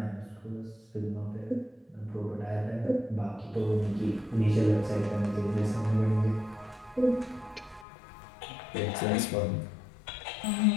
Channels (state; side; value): drops out; right; at 7.9 s